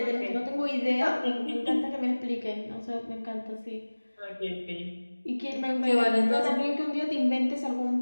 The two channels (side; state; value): both; inverted; correlation -1.00